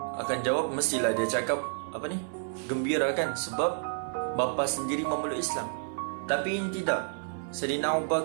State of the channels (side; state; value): left; silent; 58 dB below the other